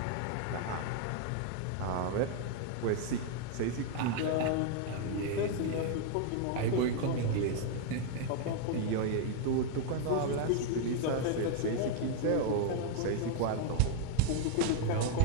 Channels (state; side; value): different; both; correlation 0.00